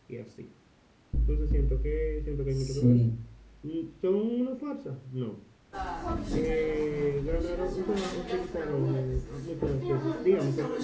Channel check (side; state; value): both; identical; correlation 1.00